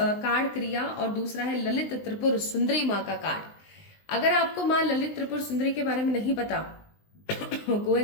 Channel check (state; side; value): late; right; 19 ms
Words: क्रिया, और दूसरा है ललित त्रिपुर सुंदरी माँ का कार्ड। अगर आपको माँ ललित त्रिपुर सुंदरी के बारे में नहीं पता, गो